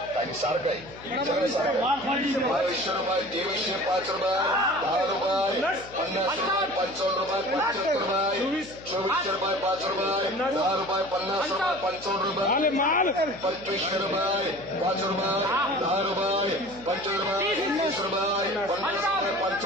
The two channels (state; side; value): noise; left; hum, 19 dB below the sound